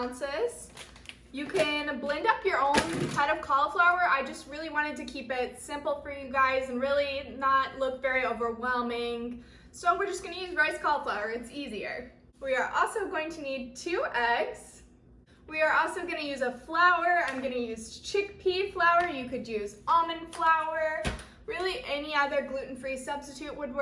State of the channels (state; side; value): identical; both; correlation 1.00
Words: You can blend up your own head of cauliflower. I just really wanted to keep it simple for you guys and really not look very overwhelming. So we're just gonna use riced cauliflower, it's easier. We are also going to need 2 eggs. We are also gonna use a flour. I'm gonna use chickpea flour. You could use almond flour. Really any other gluten-free substitute would